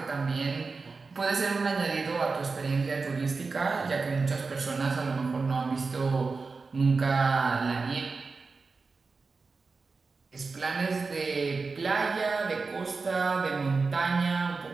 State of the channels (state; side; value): quieter; left; 4.3 dB